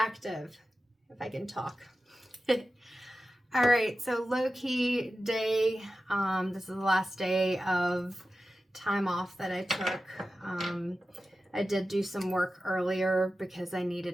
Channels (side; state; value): both; normal; correlation 0.93